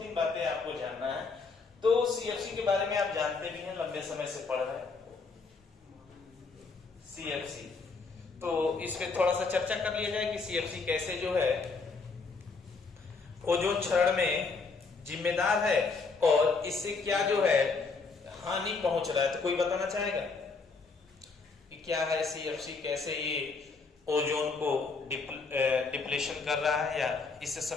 बातें आपको जानना है। तो सीएफसी के बारे में आप जानते भी हैं, लंबे समय से पढ़ रहे हैं सीएफसी। तो इस पे थोड़ा सा चर्चा कर लिया जाए कि सीएफसी कैसे जो है ओजोन क्षरण में जिम्मेदार है और इससे क्या जो है हानि पहुंच रहा है। तो कोई बताना चाहेगा कि क्या है सीएफसी, कैसे ये ओजोन को डिप्लेशन कर रहा है, या इससे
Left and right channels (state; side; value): quieter; right; 4.3 dB